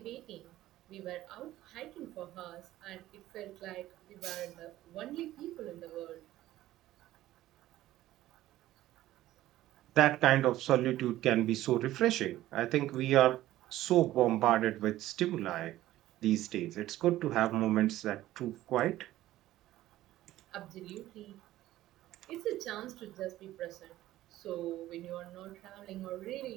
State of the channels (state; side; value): quieter; left; 14.9 dB